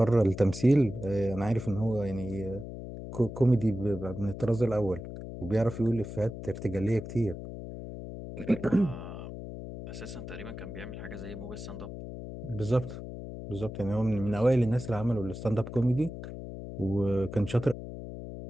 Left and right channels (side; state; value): left; noise; hum, 9 dB below the sound